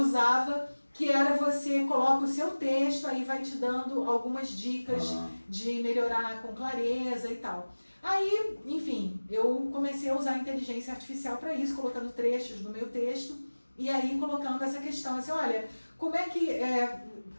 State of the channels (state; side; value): inverted; both; correlation -1.00